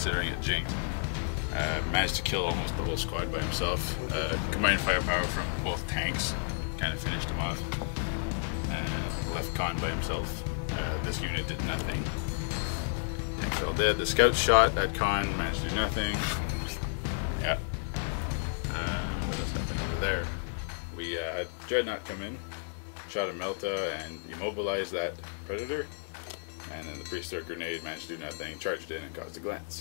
it jinked. Managed to kill almost the whole squad by himself. Combined firepower from both tanks kind of finished him off. Left Con by himself. This unit did nothing. Tanks all dead. The scouts shot at Con, managed to do nothing. Yeah. What else happened over there? We had Dreadnought come in, shot a Melta and immobilized that Predator. And then the Priest-Thrower Grenade managed to do nothing, charged in and caused a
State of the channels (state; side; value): silent; right; digital silence